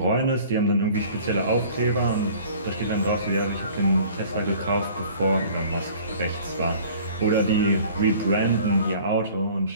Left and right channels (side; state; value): both; inverted; correlation -0.49